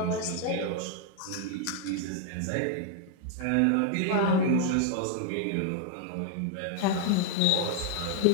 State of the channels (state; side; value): different; both; correlation 0.00